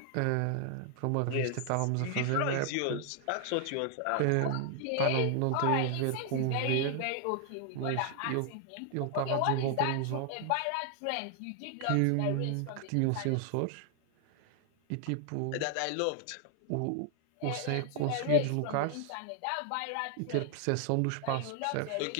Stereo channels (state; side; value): different; both; correlation 0.00